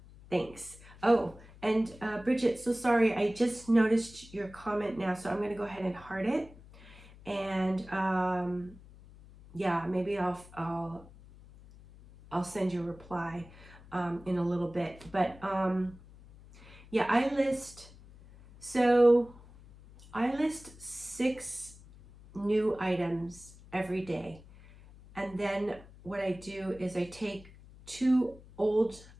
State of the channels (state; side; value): noise; left; hum, 21 dB below the sound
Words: Thanks. Oh, and Bridget, so sorry. I just noticed your comment now, so I'm going to go ahead and heart it. And yeah, maybe I'll send you a reply in a little bit. But yeah, I list 6 new items every day. And then what I do is I take 2 old